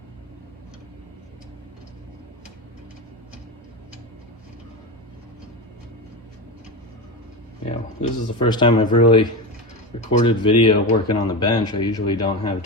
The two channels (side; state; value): both; normal; correlation 0.20